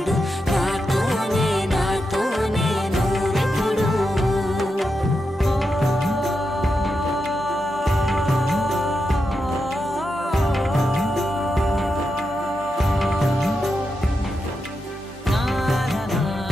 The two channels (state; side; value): normal; both; correlation 0.87